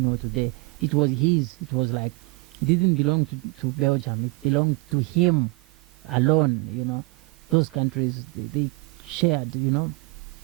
today. It was his. It was like, it didn't belong to Belgium. It belonged to him alone, Those countries, they shared,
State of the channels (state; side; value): quieter; left; 25.4 dB